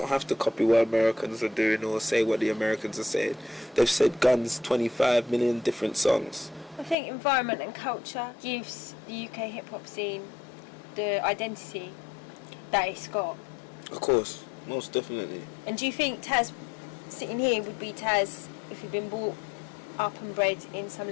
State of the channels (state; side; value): drops out; right; at 7.0 s